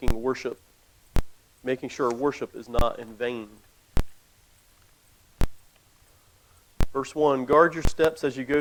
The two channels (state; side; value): identical; both; correlation 1.00